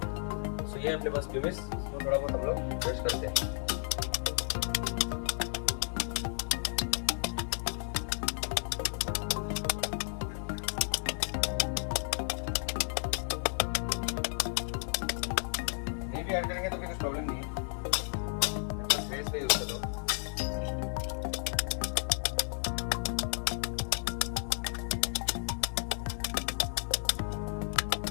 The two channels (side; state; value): right; silent; 56 dB below the other